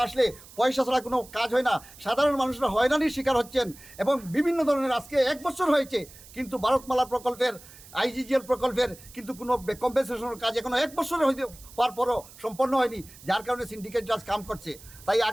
আসলে পয়সা ছাড়া কোনো কাজ হয় না। সাধারণ মানুষরা হয়রানির শিকার হচ্ছেন এবং বিভিন্ন ধরনের আজকে 1 বছর হয়েছে কিন্তু ভারতমালা প্রকল্পের, আইজিজিএল প্রকল্পের কিন্তু কোনো কম্পেনসেশনের কাজ এখনো 1 বছরে হওয়ার পরও সম্পন্ন হয়নি, যার কারণে সিন্ডিকেট রাজ কাম করছে। তাই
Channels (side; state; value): right; noise; hiss, 20 dB below the sound